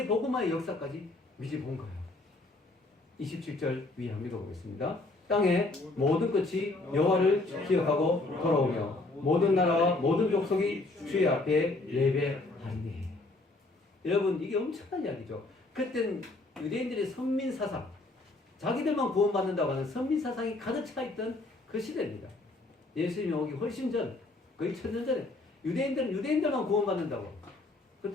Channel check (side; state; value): right; quieter; 3.1 dB